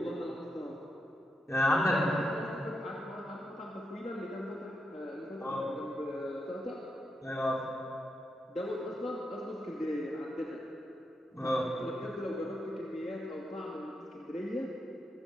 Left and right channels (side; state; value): both; normal; correlation 0.83